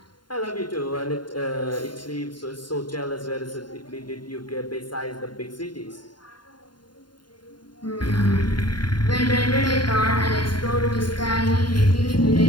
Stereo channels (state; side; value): late; right; 0.71 ms